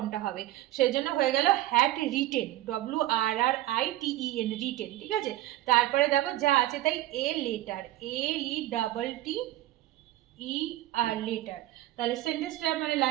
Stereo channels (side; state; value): left; quieter; 15.4 dB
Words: হবে, সেজন্য হয়ে গেল had written, W R R I T E N, written. ঠিক আছে, তারপরে দেখো যা আছে তাই, a letter, L E double T E R, letter. তাহলে সেন্টেন্সটা মানে